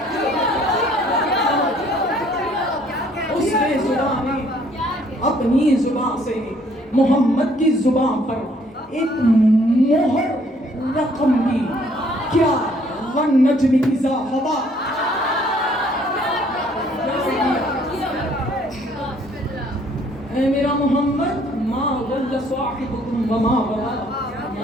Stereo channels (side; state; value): both; normal; correlation 0.62